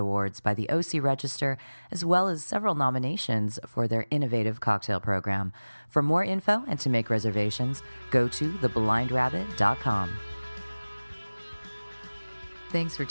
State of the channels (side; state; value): both; inverted; correlation -1.00